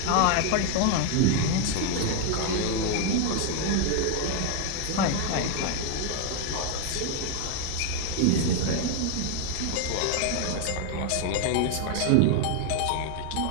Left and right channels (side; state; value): both; different; correlation 0.00